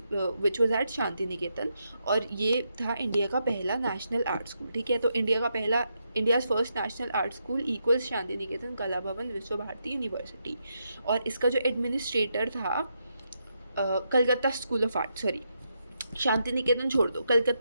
which was at Shanti Niketan. और ये था इंडिया का पहला नेशनल आर्ट स्कूल, ठीक है। तो India's first national art school equals Shanti Niketan, Kala Bhavan, विश्व भारती यूनिवर्सिटी। और इसका जो एडमिनिस्ट्रेटर था Calcutta school of art, sorry Shanti Niketan छोड़ दो,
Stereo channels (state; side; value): inverted; both; correlation -0.82